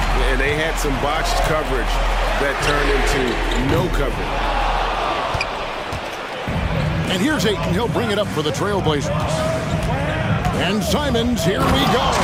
And they had some botched coverage that turned into no coverage. And here's Ayton. He'll bring it up for the Trailblazers. And Simons, here we go.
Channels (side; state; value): both; identical; correlation 1.00